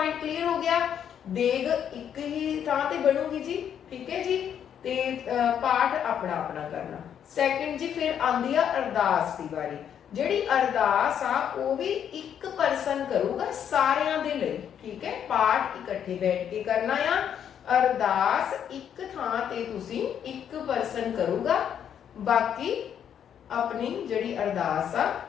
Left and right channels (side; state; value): right; quieter; 8.9 dB